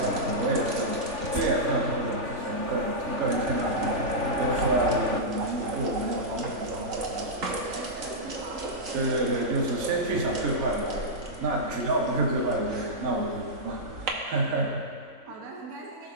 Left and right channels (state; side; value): late; left; 3.9 ms